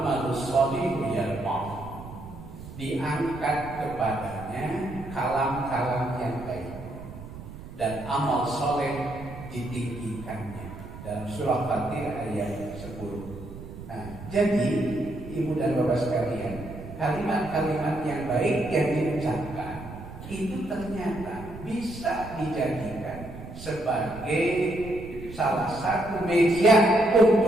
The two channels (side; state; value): right; noise; rumble, 13 dB below the sound